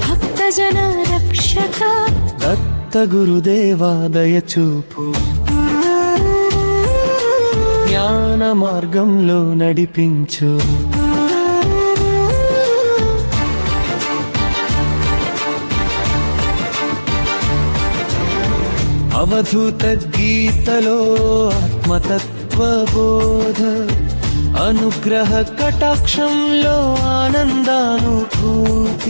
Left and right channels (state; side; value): inverted; both; correlation -1.00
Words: భక్తజన రక్షక. దత్త గురుదేవా దయచూపు, జ్ఞాన మార్గంలో నడిపించు. అవధూత గీతలో ఆత్మతత్వ బోధ, అనుగ్రహ కటాక్షంలో